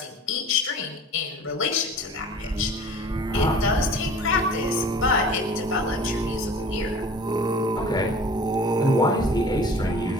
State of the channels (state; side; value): normal; both; correlation 0.45